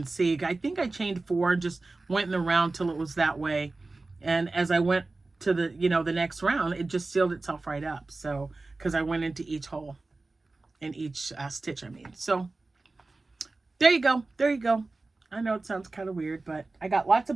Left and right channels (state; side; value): quieter; left; 3.4 dB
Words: see. I think I chained 4, just went in the round till it was that way. And as I went to the, the next round, it just sealed itself right up. So, because I went into each hole in each stitch, I mean. So there you go. There you go. I know it sounds kind of weird, but I got lots